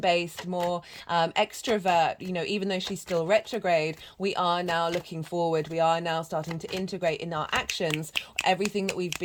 more extrovert. You know, even though she's still retrograde, we are now looking forward, we are now starting to integrate in our actions everything that we've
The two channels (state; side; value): identical; both; correlation 1.00